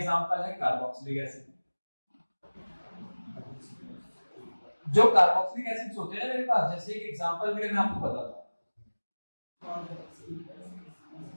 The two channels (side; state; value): both; inverted; correlation -1.00